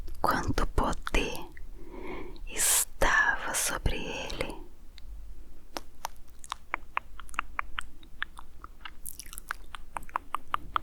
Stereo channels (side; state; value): both; identical; correlation 1.00